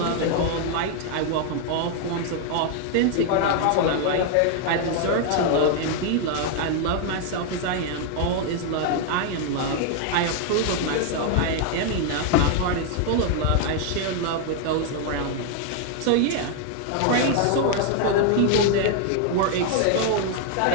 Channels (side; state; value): both; different; correlation 0.00